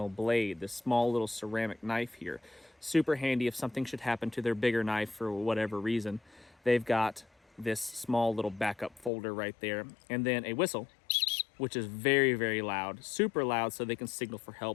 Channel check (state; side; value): drops out; right; at 9.1 s